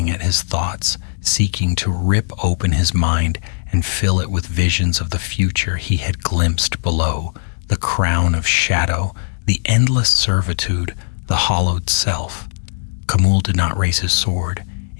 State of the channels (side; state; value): right; silent; digital silence